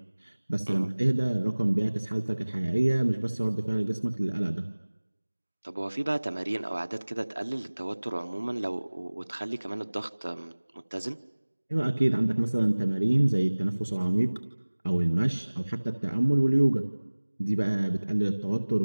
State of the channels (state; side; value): inverted; both; correlation -1.00